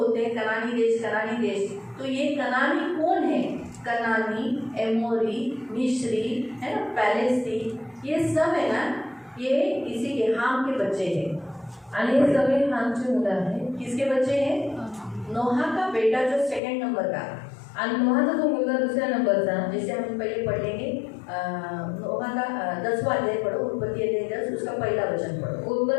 हैं, कनानी देश, तो ये कनानी कौन है? कनानी, एमोरी, मिस्री, है ना, पैलेस्टी, ये सब है ना, ये इसी के हाम के बच्चे हैं. आणि हे सगळे हामची मुलं आहेत. किसके बच्चे हैं? नोहा का बेटा जो 2nd नंबर का, आणि नोहाचा जो मुलगा 2ऱ्या नंबरचा, जैसे हम पहले पढ़ लेंगे. नोहा का 10वां अध्याय पढ़ो, उत्पत्ति अध्याय 10, उसका पहला वचन पढ़ो.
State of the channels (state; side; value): drops out; right; at 16.6 s